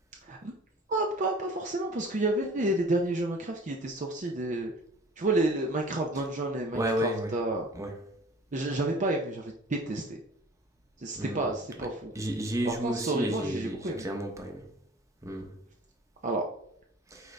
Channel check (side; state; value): both; normal; correlation 0.46